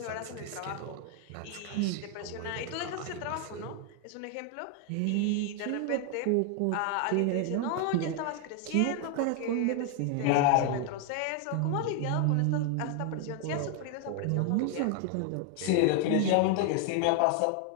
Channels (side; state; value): both; different; correlation 0.00